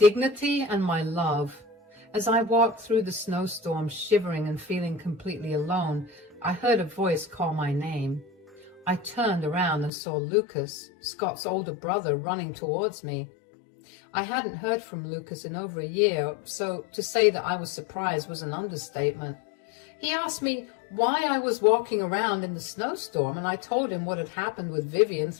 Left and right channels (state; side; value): drops out; right; at 9.9 s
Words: and my love. As I walked through the snowstorm, shivering and feeling completely alone, I heard a voice call my name. I turned around and saw Lucas, Scott's older brother, running towards me. I hadn't heard from Lucas in over a year, so to say that I was surprised was an understatement. He asked me why I was walking around in the snowstorm, and I told him what had happened with Vivian